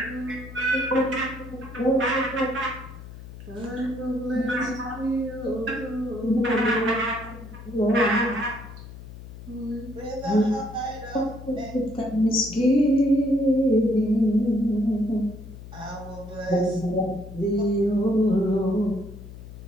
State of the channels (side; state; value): left; noise; hum, 14 dB below the sound